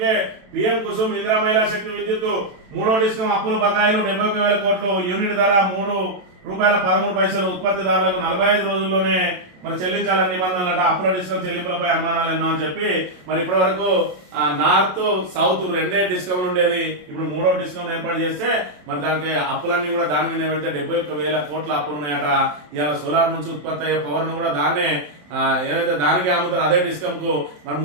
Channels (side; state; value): left; late; 27 ms